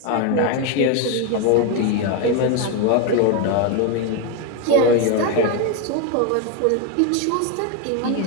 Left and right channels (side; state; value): both; different; correlation 0.02